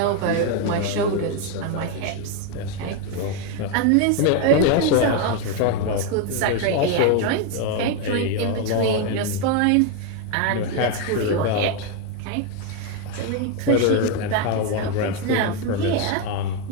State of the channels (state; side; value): different; both; correlation 0.01